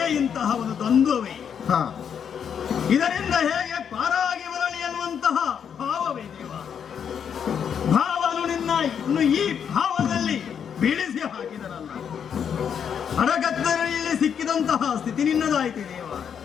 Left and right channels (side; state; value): right; quieter; 7.8 dB